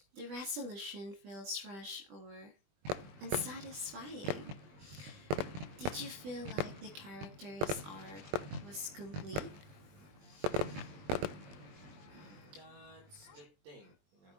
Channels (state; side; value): late; left; 20 ms